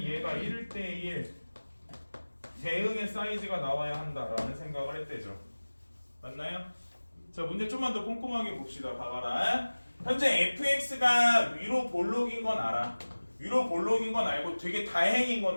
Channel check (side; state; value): both; inverted; correlation -1.00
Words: 얘가 1대1 대응의 사이즈가 나와야 한다라는 생각을 했대죠. 맞나요? 자, 문제 좀만 더 꼼꼼하게 봅시다. 봐봐라. 현재 fx가 위로 볼록인 건 알아. 위로 볼록인 건 알고 되게 다행인